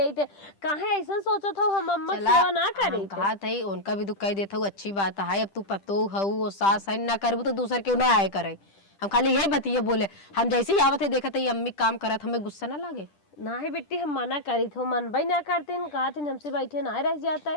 थे। काहे ऐसा सोचा था हम अम्मा सेवा ना करे? कहा था उनका भी दुख कह देता हूँ, अच्छी बात है। अब तू पतो हऊ वो सास है ना करबू तो दूसर क्यों ना आए करे। हम खाली यही बतिए बोले, हम जैसे ही आवत है देखा था ये अम्मी काम करत, हमें गुस्सा ना लगे। ना ही बेटी हम मना करी थे, मन भाई ना करते कहा थे हमसे बैठे ना रह जाता है।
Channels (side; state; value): right; late; 10 ms